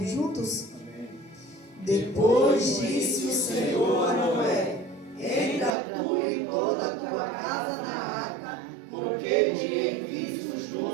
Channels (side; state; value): left; drops out; at 5.8 s